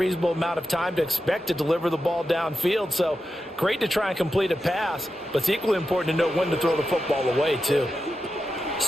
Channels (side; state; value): both; normal; correlation 0.90